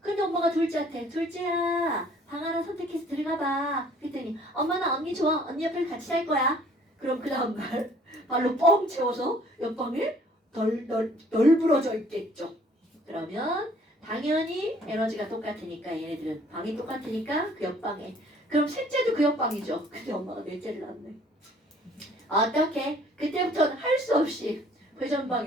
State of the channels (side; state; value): both; normal; correlation 0.57